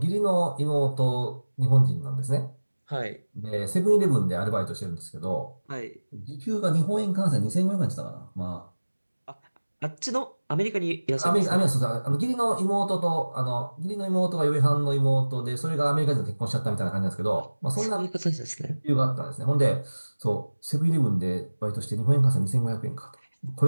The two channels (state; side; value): inverted; both; correlation -1.00